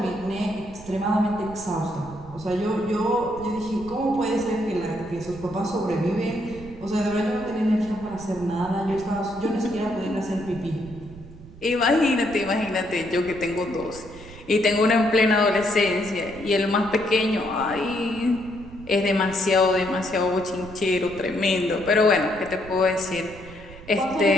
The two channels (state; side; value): noise; right; rumble, 17 dB below the sound